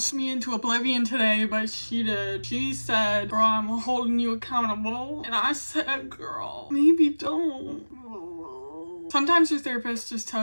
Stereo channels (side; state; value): both; inverted; correlation -1.00